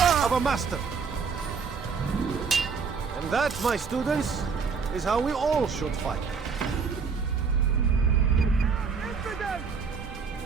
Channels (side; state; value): left; quieter; 5.6 dB